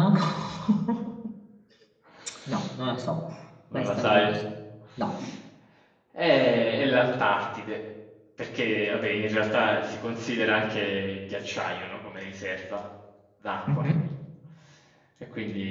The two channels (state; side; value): identical; both; correlation 1.00